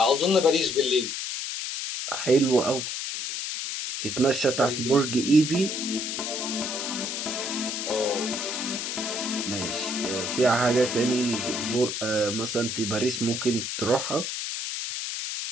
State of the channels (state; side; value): noise; left; hiss, 4 dB below the sound